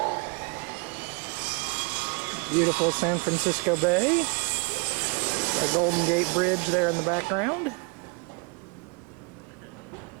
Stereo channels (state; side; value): quieter; left; 30.6 dB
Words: Beautiful San Francisco Bay, a Golden Gate Bridge there in the background.